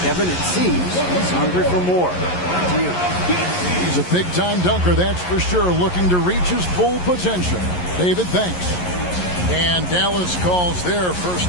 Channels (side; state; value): right; late; 11 ms